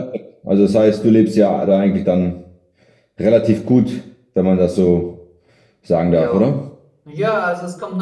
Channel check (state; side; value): identical; both; correlation 1.00